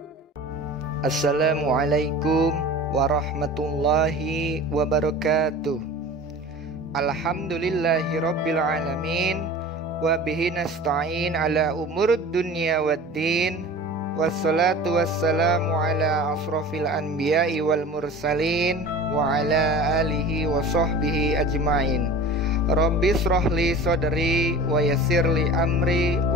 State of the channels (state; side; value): normal; both; correlation 0.38